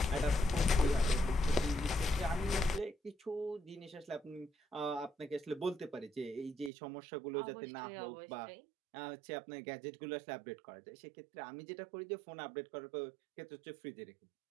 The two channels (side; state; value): left; drops out; at 6.7 s